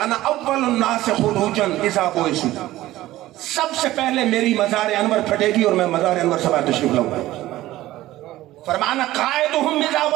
اول الناس خروجا اذا بعثوا، سب سے پہلے میری مزار انور پھٹے گی اور میں مزار انور سے باہر تشریف لاؤں گا۔ فرمانا قائدہم اذا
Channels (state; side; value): quieter; left; 15.9 dB